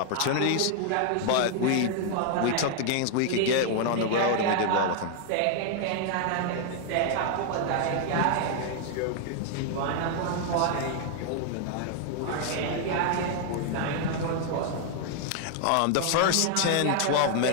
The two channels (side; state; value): both; different; correlation 0.00